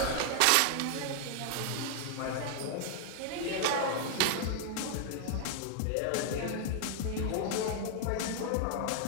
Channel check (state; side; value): different; both; correlation 0.00